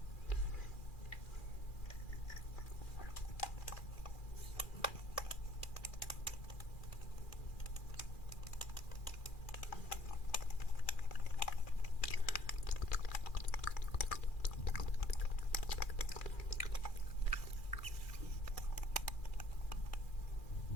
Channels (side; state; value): right; late; 2.4 ms